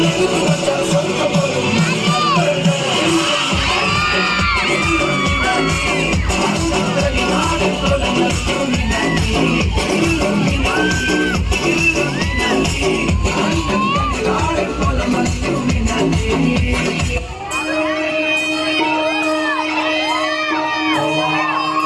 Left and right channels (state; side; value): identical; both; correlation 1.00